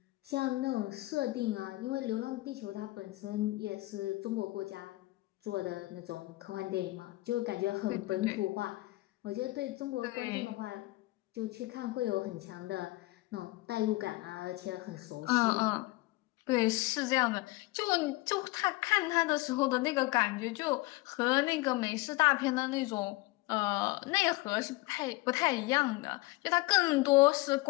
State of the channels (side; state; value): right; quieter; 20.8 dB